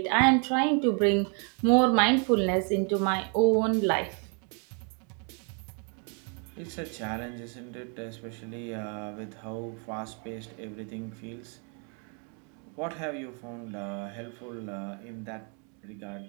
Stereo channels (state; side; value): quieter; left; 39.0 dB